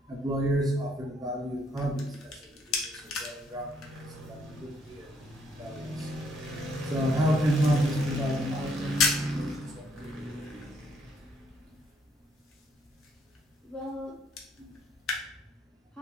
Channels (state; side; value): normal; both; correlation 0.69